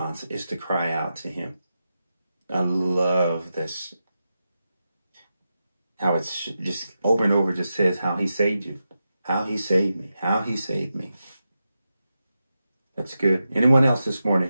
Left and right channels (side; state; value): both; inverted; correlation -0.89